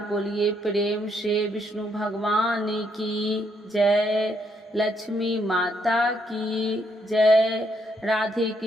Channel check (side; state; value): both; normal; correlation 0.74